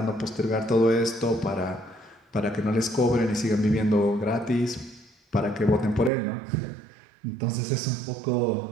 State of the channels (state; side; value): drops out; left; at 6.1 s